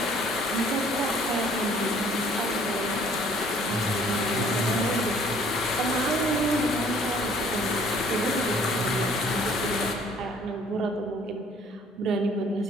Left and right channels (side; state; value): both; normal; correlation 0.58